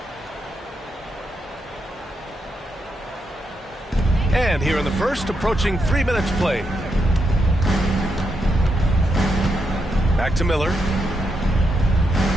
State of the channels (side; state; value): both; normal; correlation 0.82